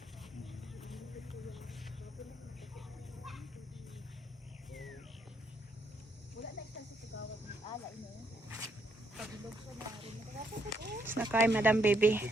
Nakay Madam Baby.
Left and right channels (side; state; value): both; normal; correlation 0.75